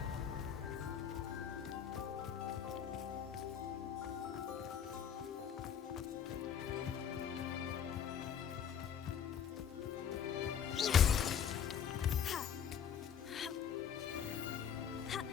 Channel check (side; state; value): right; quieter; 8.3 dB